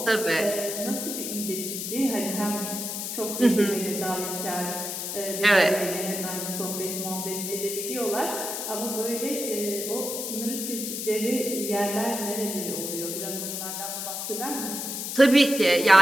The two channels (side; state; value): left; noise; hiss, 4 dB below the sound